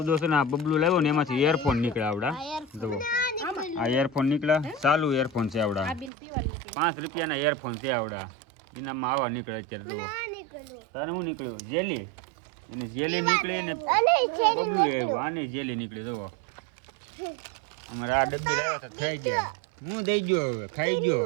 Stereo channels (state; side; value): drops out; left; at 6.1 s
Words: છે ને આ બબલું લાવ્યો ને એમાંથી એરફોન નીકળ્યા આવડા. જુઓ આ એરફોન નીકળ્યા, ચાલુ એરફોન છે આવડા. 5 રૂપિયાના એરફોન છે આવડા. ઇનામમાં આવા નીકળે અત્યારે. જુઓ તારે શું નીકળ્યું? જેલી. એને જેલી નીકળી ને બબલું આવ્યું. આની જેલી નીકળી. જુઓ અમારે આ ડબ્બી લાવ્યા તો થઈ ગયા. હું દઈ ગયો હવે ખાઈ